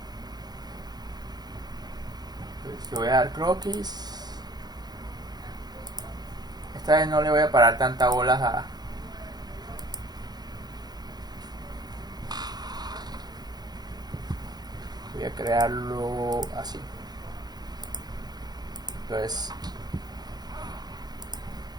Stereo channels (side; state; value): left; late; 0.20 ms